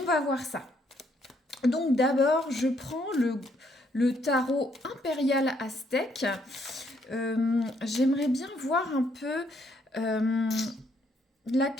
va voir ça. Donc d'abord, je prends le tarot impérial aztèque. J'aimerais bien voir un peu la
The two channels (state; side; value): normal; both; correlation 0.71